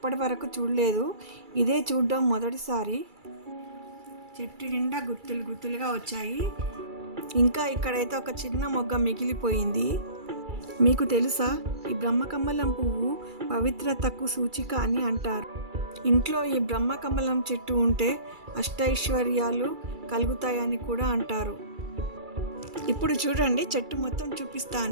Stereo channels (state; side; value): late; left; 2.3 ms